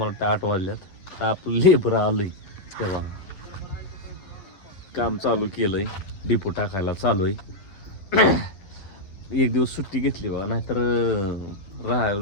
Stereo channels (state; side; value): late; right; 11 ms